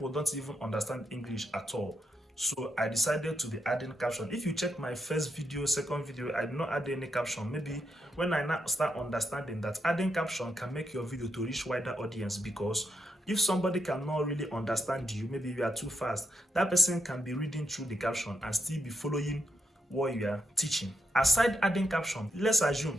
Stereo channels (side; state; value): both; normal; correlation 0.80